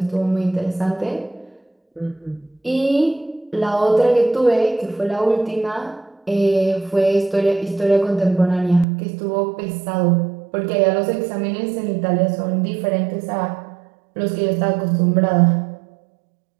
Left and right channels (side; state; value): left; drops out; at 8.8 s